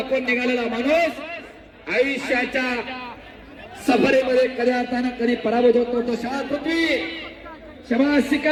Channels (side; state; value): both; identical; correlation 1.00